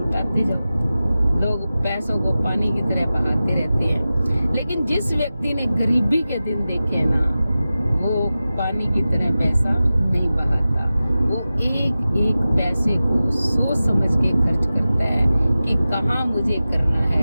जाओ। लोग पैसों को पानी की तरह बहाते रहते हैं, लेकिन जिस व्यक्ति ने गरीबी के दिन देखे ना, वो पानी की तरह पैसा नहीं बहाता। वो एक एक पैसे को सोच समझ के खर्च करता है कि कहाँ मुझे करना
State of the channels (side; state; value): both; inverted; correlation -0.95